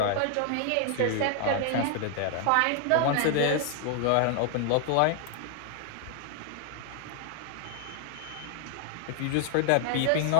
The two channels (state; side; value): different; both; correlation 0.00